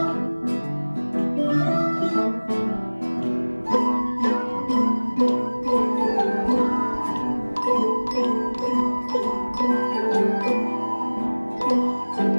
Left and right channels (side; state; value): both; inverted; correlation -1.00